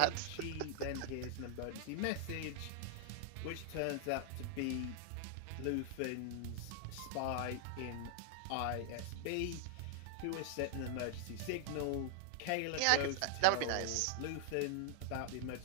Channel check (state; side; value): different; both; correlation 0.00